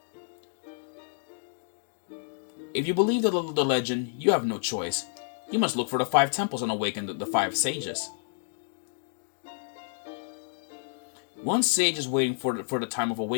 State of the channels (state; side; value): silent; right; digital silence